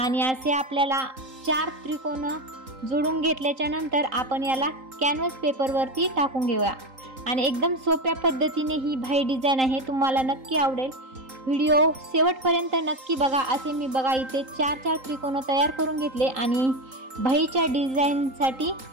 असे आपल्याला 4 त्रिकोण जोडून घेतल्याच्या नंतर आपण याला कॅनव्हास पेपरवरती टाकून घेऊया। आणि एकदम सोप्या पद्धतीने ही बाही डिझाइन आहे, तुम्हाला नक्की आवडेल। व्हिडिओ शेवटपर्यंत नक्की बघा। असे मी बघा इथे 4-4 त्रिकोण तयार करून घेतले आणि बाहीच्या डिझाइनसाठी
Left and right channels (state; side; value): late; left; 3.8 ms